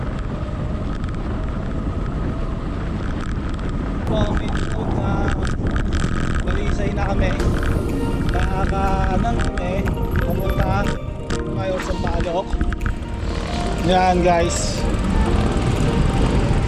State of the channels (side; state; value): both; identical; correlation 1.00